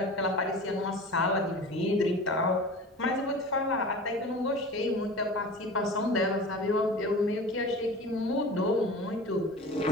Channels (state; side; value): normal; both; correlation 0.36